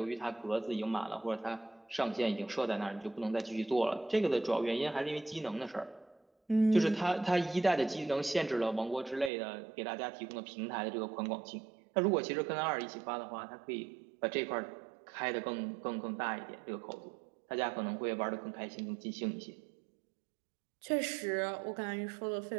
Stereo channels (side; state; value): left; drops out; at 9.3 s